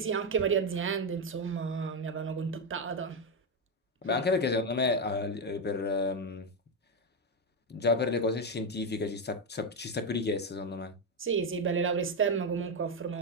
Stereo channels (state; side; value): normal; both; correlation 0.07